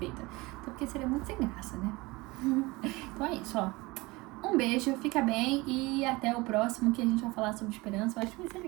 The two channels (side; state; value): left; quieter; 22.8 dB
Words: até porque seria muito sem graça, né? Então é isso, ó. Um beijo, fica bem e até o próximo que a gente vai falar sobre esperança. Eu acho que vai ser